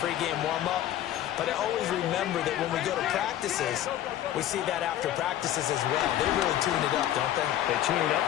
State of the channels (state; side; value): quieter; right; 12.3 dB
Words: pregame warm-up. But I always remember that when we go to practices, we see that after practices as well. They really tune it up, don't they? They tune it up.